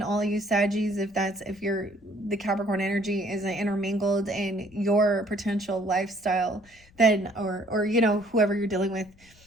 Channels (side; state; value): left; noise; rumble, 28 dB below the sound